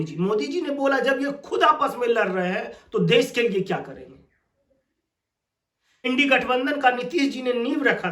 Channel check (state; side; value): identical; both; correlation 1.00